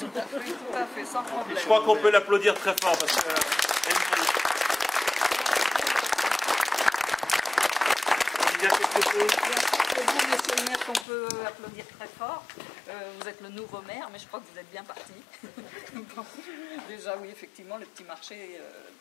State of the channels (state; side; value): drops out; right; at 11.1 s